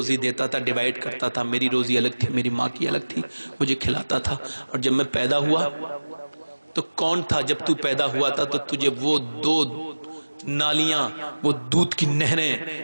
دیتا تھا, ڈیوائیڈ کرتا تھا, میری روزی الگ تھی, میری ماں کی الگ تھی, مجھے کھلاتا تھا. اور جب میں پیدا ہوا تو کون تھا, جب تو پیدا ہوا تھا تو تجھے وہ 2 نالیاں, وہ دودھ کی نہریں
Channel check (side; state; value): both; inverted; correlation -1.00